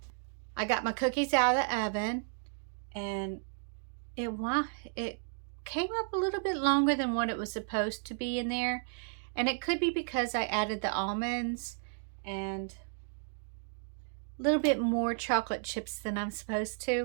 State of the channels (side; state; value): left; silent; digital silence